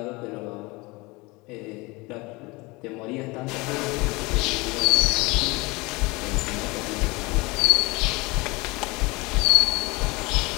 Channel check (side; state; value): right; quieter; 24.6 dB